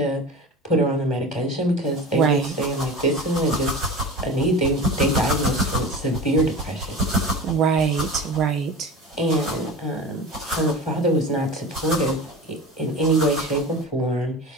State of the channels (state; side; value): normal; both; correlation 0.32